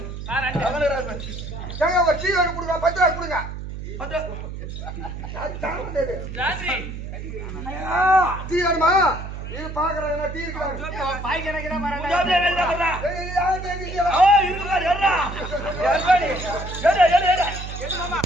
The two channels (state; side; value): noise; right; hum, 8 dB below the sound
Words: ஏங்க ஒரு டீ வேணும் கொடுங்க 10 ரூபாய் கொடுங்க. 10 டீ வேணுமா? இது பாக்குறாங்க டீ இருக்கு பாய் கணக்குல வரடா ஏய் யார் தேடிங்க ஓ இருக்குடா ஏறா ஏறு மாமா